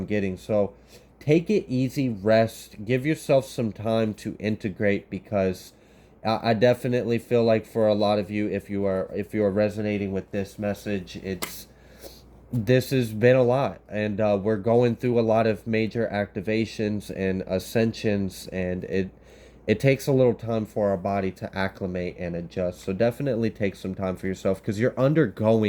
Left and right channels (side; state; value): both; identical; correlation 1.00